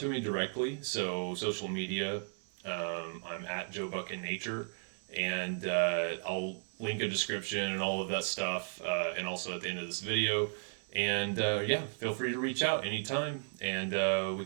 me directly. So social media, I'm at Joe Buck in Nature, and I'll link a description and all of that stuff, and also at the end of this video. And yeah, feel free to reach out anytime, and we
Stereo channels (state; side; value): silent; left; digital silence